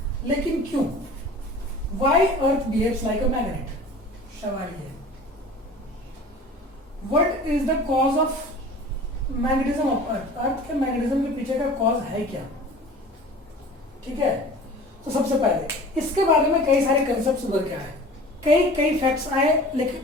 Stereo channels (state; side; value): normal; both; correlation 0.42